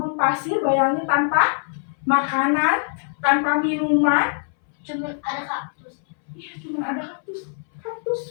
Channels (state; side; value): silent; right; 62 dB below the other